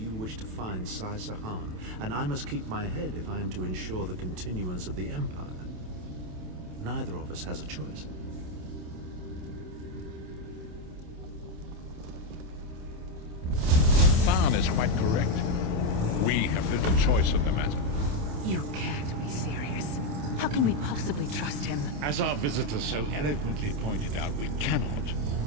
wish to find Sai-Sahan, and I must keep my head if I am to ensure the continuance of the Empire. Neither of us has a choice. Tharn is quite correct. We have little choice in the matter. You can't be serious. How can we possibly trust him? As our visitor so eloquently pointed out, we cannot.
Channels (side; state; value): left; late; 27 ms